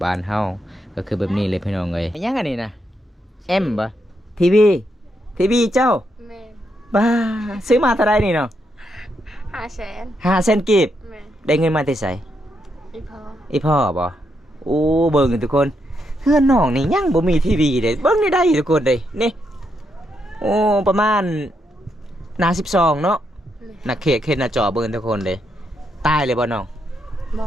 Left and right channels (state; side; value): normal; both; correlation 0.80